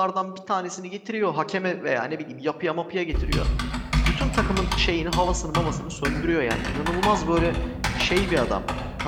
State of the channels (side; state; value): both; identical; correlation 1.00